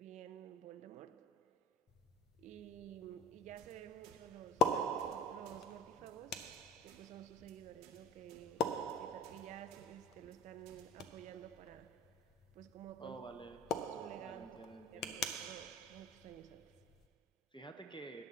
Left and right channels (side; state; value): both; normal; correlation 0.36